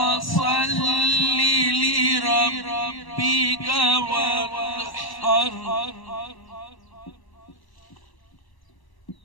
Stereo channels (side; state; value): right; late; 1.0 ms